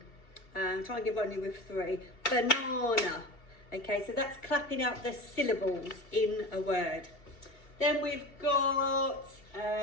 try and give only with 3, banana. Okay, so that's clapping out the syllables in a word. Then we've got,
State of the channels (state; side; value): late; right; 2.7 ms